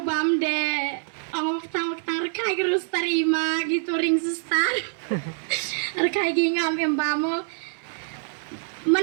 de ang waktang rekai gerus tarima gitu ring sustar. Rekai gingam embamo.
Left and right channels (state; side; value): silent; left; digital silence